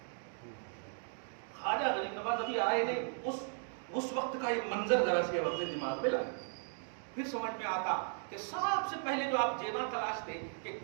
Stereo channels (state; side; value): silent; left; 53 dB below the other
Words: خواجہ غریب نواز ابھی آئے نہیں، اس وقت کا ایک منظر ذرا سے اپنے دماغ میں لائے، پھر سمجھ میں آتا کہ سب سے پہلے جو آپ جیباں تلاشتے کہ ایک